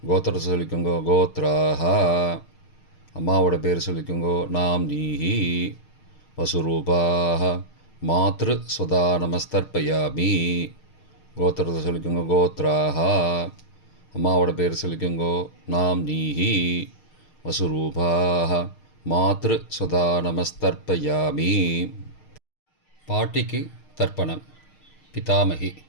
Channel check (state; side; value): late; right; 6.5 ms